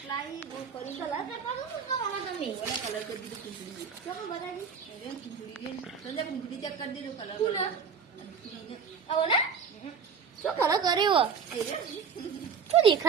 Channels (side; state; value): left; quieter; 6.3 dB